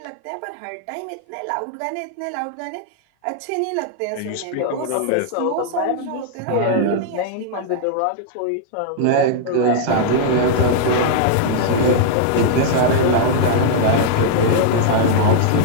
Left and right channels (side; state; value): both; different; correlation -0.01